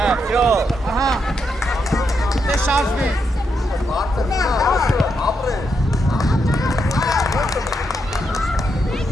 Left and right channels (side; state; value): both; normal; correlation 0.81